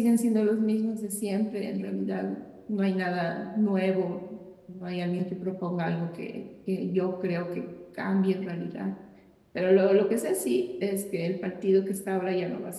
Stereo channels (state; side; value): identical; both; correlation 1.00